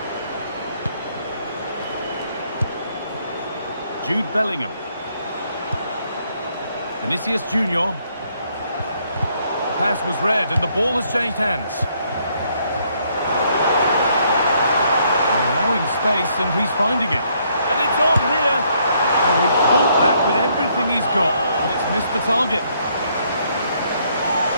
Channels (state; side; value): inverted; both; correlation -0.70